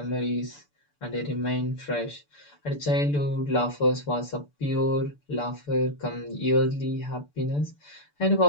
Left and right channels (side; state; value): right; late; 6.8 ms